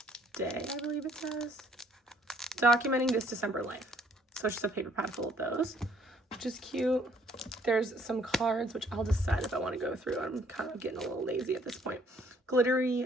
day, I believe it says. Documenting this December life. So it's just a paper pad full of those, which is cute. There's some cards, which I'll decide if I want to go through. I'm kind of getting a little lazy at this point.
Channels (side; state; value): both; normal; correlation 0.63